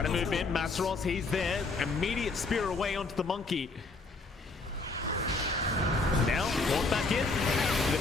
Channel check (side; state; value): right; quieter; 3.7 dB